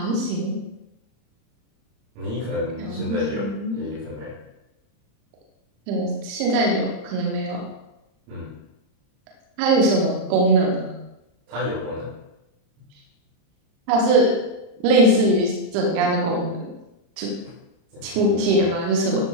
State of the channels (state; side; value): late; left; 35 ms